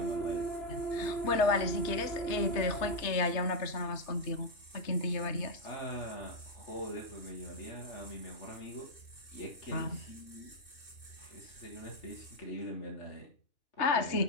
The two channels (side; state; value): right; late; 3.3 ms